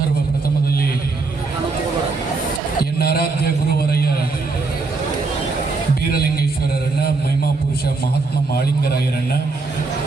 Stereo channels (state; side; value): quieter; left; 3.9 dB